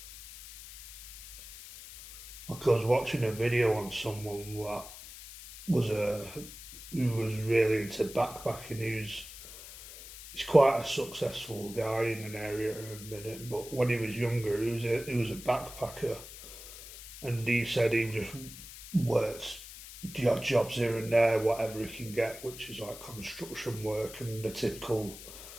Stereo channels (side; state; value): left; noise; hiss, 14 dB below the sound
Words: Like I was watching a video on someone that was who was really into backpacking. He's quite a successful guy in an area in a minute, but when he was younger, he was a backpacker, and he said he just works the odd jobs here and there, whatever he can get, which is like construction work and the typical